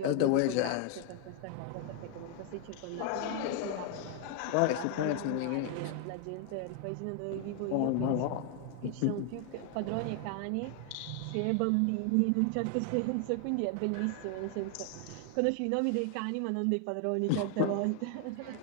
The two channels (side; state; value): both; different; correlation 0.01